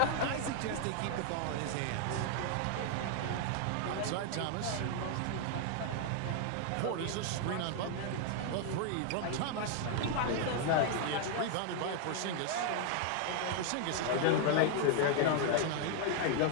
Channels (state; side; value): different; both; correlation 0.00